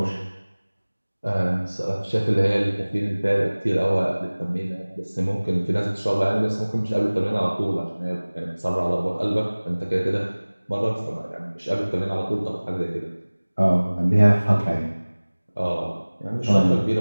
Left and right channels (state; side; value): inverted; both; correlation -1.00